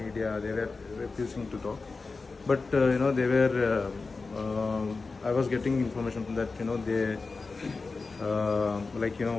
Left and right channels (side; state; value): right; quieter; 4.1 dB